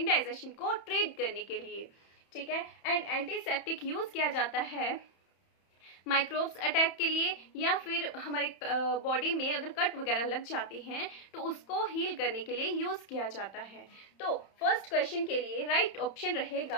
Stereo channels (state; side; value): late; right; 31 ms